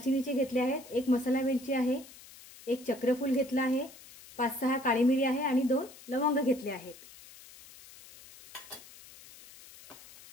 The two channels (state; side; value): noise; left; hiss, 20 dB below the sound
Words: घेतले आहेत। 1 मसाला वेलची आहे। 1 चक्रफूल घेतला आहे। 5-6 काळी मिरी आहे आणि 2 लवंग घेतले आहेत।